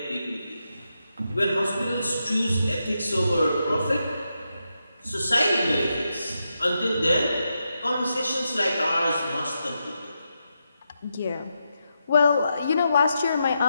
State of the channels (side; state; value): both; inverted; correlation -0.85